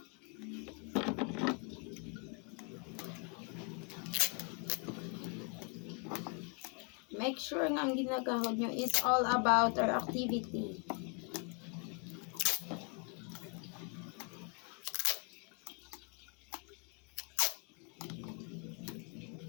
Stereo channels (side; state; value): right; quieter; 35.1 dB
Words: Make sure nga ang ginagahod nyo is all about our activity.